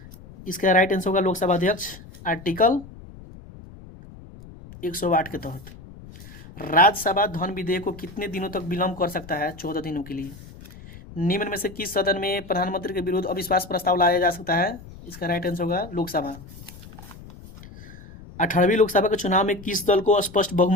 इसका राइट आंसर होगा लोकसभा अध्यक्ष, आर्टिकल 108 के तहत। राज्यसभा धन विधेयक को कितने दिनों तक विलंब कर सकता है? 14 दिनों के लिए। निम्न में से किस सदन में प्रधानमंत्री के विरुद्ध अविश्वास प्रस्ताव लाया जा सकता है? इसका राइट आंसर होगा लोकसभा। 18वीं लोकसभा के चुनाव में किस दल को स्पष्ट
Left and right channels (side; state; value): left; noise; rumble, 17 dB below the sound